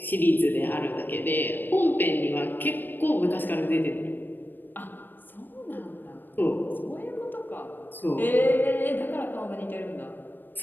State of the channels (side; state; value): right; late; 0.093 ms